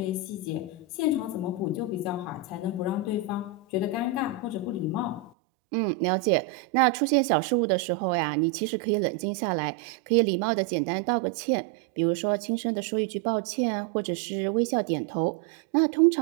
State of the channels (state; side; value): drops out; left; at 5.3 s